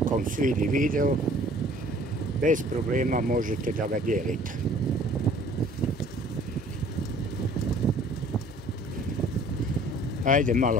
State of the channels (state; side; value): normal; both; correlation 0.53